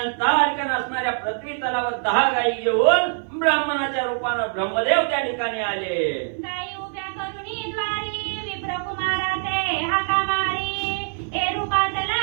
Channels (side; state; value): left; silent; 56 dB below the other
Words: तारकन असणाऱ्या पृथ्वी तलावर 10 गायी घेऊन ब्राह्मणाच्या रूपानं ब्रह्मदेव त्या ठिकाणी आले. गाई उभ्या करुणी द्वारी, विप्रकुमारा ते हाका मारी, ए